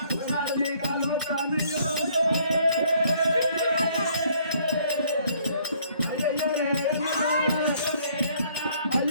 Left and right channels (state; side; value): inverted; both; correlation -0.63